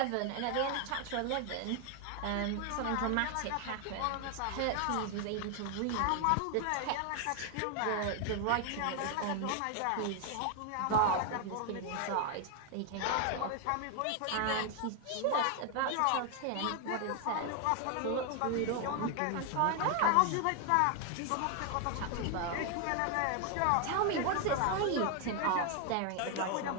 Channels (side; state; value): both; different; correlation 0.01